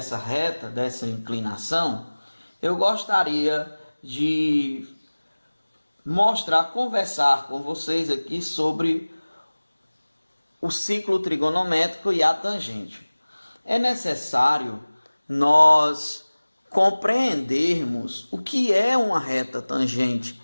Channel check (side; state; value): both; inverted; correlation -1.00